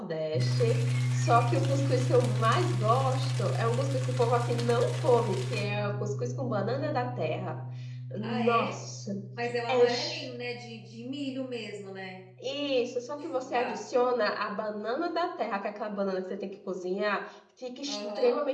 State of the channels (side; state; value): both; identical; correlation 1.00